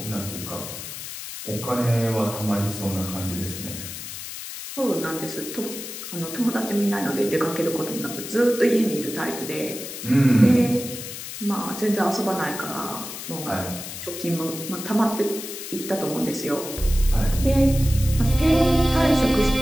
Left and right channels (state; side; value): noise; left; hiss, 9 dB below the sound